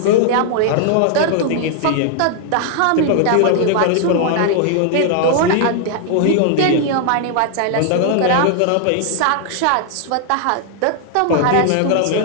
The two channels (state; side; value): different; both; correlation 0.00